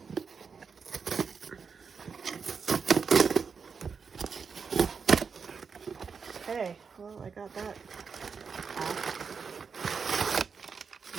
Okay, well, I got that off.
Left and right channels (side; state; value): left; quieter; 5.7 dB